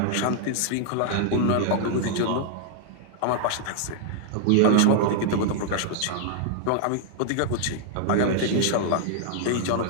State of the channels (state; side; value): different; both; correlation -0.01